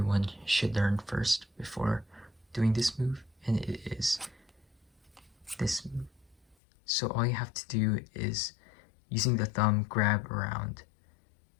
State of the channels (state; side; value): drops out; right; at 6.6 s